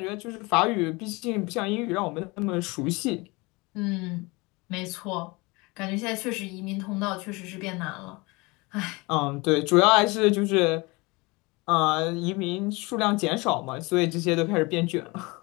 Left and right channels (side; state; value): right; quieter; 25.3 dB